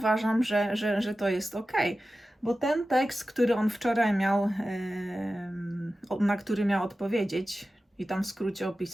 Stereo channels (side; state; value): both; normal; correlation 0.94